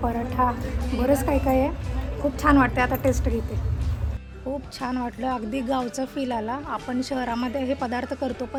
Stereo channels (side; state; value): both; identical; correlation 1.00